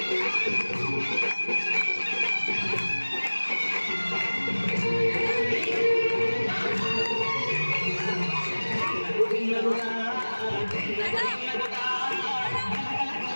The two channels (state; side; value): inverted; both; correlation -1.00